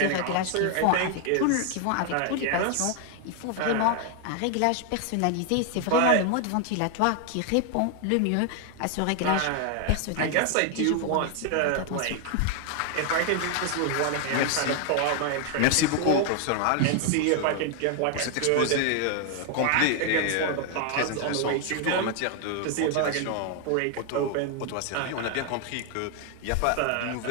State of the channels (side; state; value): both; different; correlation 0.00